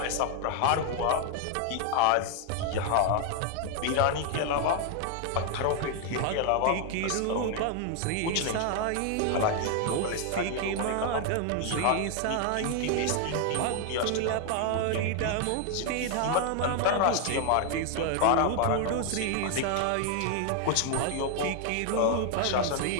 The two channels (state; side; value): different; both; correlation 0.00